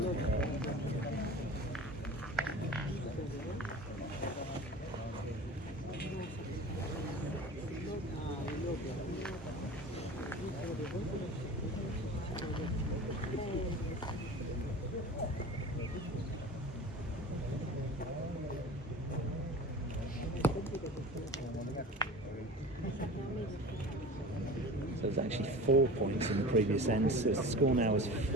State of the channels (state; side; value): normal; both; correlation 0.36